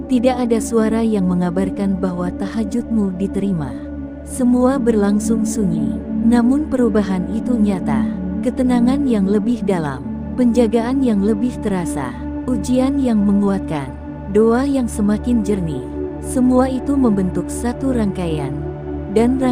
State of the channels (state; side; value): identical; both; correlation 1.00